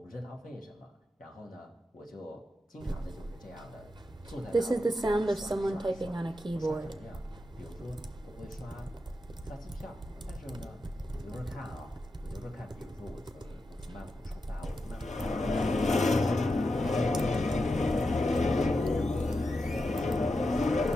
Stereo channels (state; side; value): normal; both; correlation 0.88